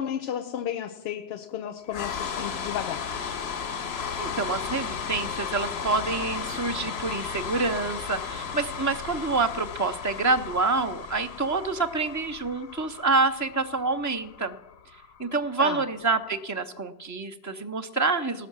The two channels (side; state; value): right; late; 3.0 ms